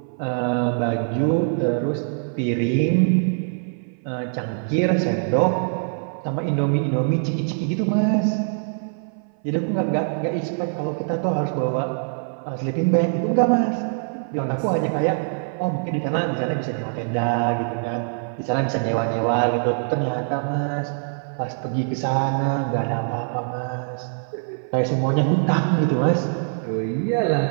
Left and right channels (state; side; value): silent; left; 57 dB below the other